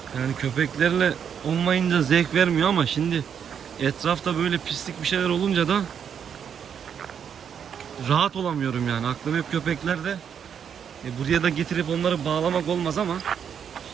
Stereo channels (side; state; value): left; quieter; 7.9 dB